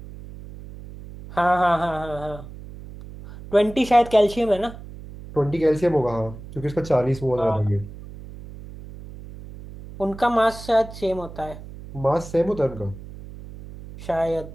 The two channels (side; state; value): right; noise; hum, 15 dB below the sound